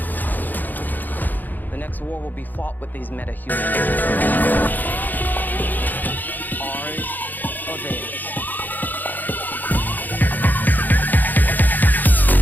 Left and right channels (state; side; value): late; right; 0.086 ms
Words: The next war will be fought with these meta-humans.